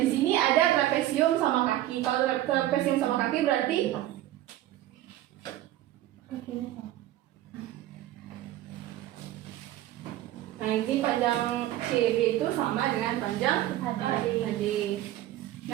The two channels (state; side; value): quieter; left; 14.1 dB